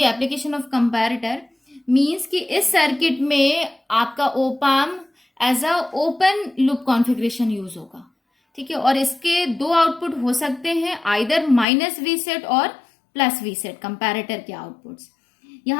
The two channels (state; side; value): drops out; right; at 11.7 s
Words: of comparator. Means कि इस सर्किट में आपका opamp as a open loop configuration use होगा, ठीक है। और इसके दो आउटपुट हो सकते हैं, आइदर माइनस वी सेट और प्लस वी सेट कंपैरेटर के आउटपुट्स।